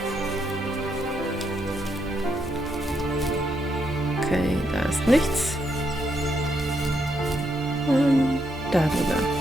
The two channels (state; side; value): normal; both; correlation 0.78